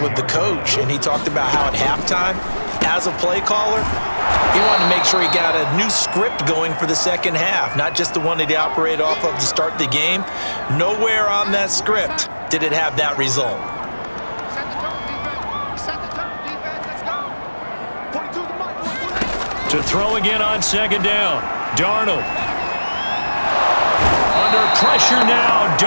with the coach, and he talked about how at halftime, as a play caller, he wanted to make sure he got a new script going for the second half, not just the one that he operated off of to start the game. Nowhere on that script did it have that result. To throw again on 2nd down, Darnold. Under pressure now,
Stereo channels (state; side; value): inverted; both; correlation -1.00